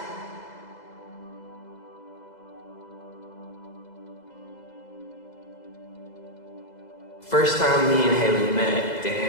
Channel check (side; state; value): right; late; 2.0 ms